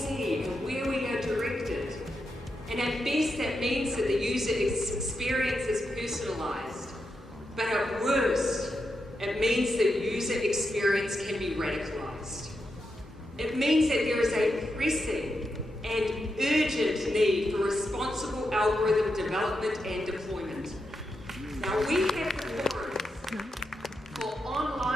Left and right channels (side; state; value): both; normal; correlation 0.85